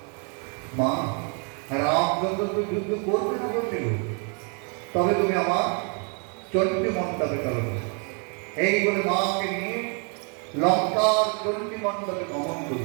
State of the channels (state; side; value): quieter; left; 38.8 dB